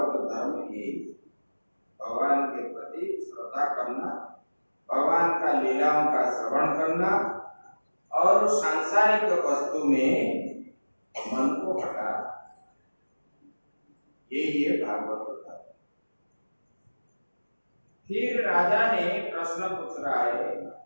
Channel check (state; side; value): inverted; both; correlation -1.00